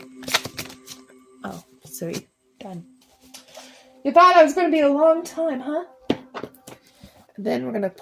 Oh, so done. You thought I was going to be a long time, huh? Then we're going to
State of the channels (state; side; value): identical; both; correlation 1.00